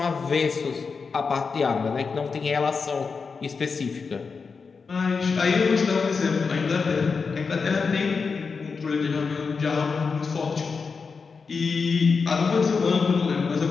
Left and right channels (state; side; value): quieter; right; 5.1 dB